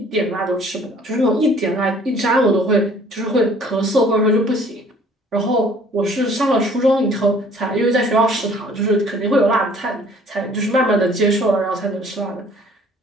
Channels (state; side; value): normal; both; correlation 0.55